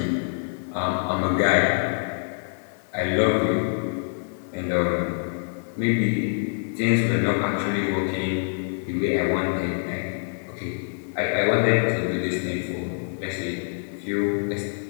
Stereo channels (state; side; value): silent; right; 60 dB below the other